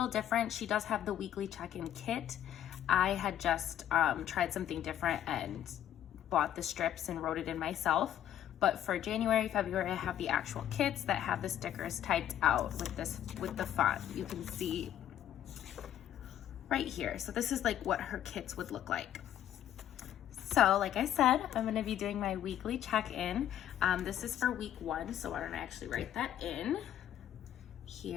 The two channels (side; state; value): right; quieter; 11.0 dB